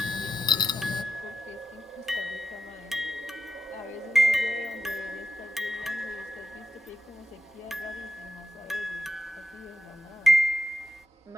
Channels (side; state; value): both; normal; correlation 0.85